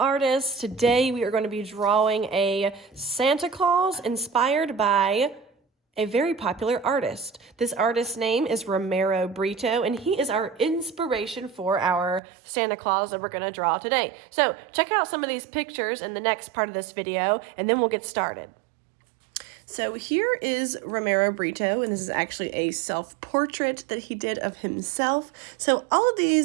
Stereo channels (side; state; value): left; drops out; at 12.2 s